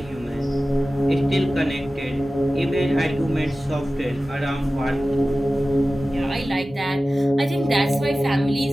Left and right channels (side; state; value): both; normal; correlation 0.95